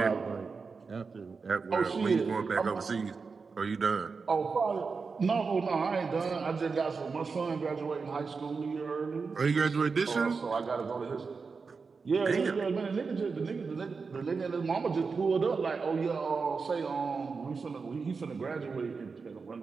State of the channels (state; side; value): quieter; left; 4.8 dB